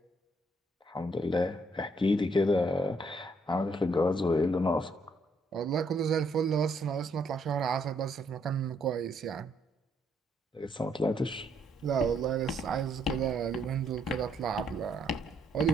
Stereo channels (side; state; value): both; normal; correlation 0.71